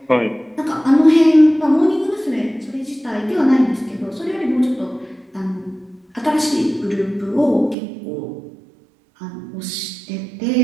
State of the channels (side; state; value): left; drops out; at 7.8 s